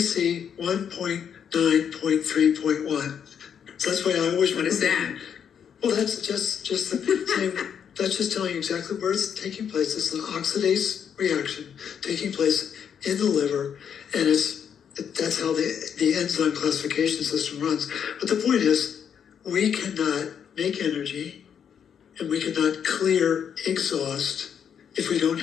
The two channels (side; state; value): right; quieter; 8.0 dB